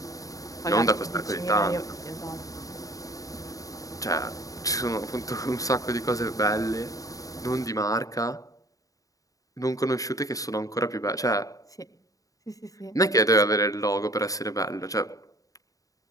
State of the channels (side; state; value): right; late; 0.17 ms